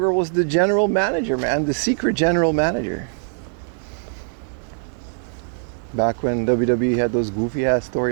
was the general manager, man. The secret general manager. Back when WWE had those goofy ass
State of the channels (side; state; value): left; silent; digital silence